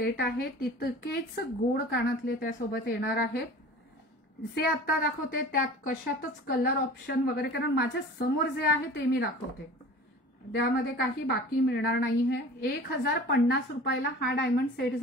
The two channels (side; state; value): both; normal; correlation 0.41